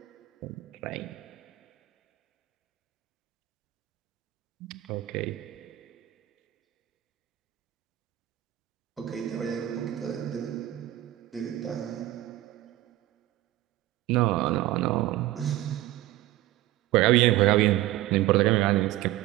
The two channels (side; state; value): left; quieter; 15.5 dB